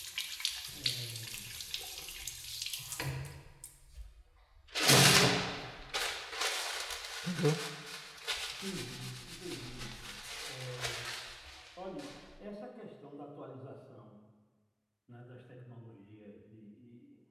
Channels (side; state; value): both; identical; correlation 1.00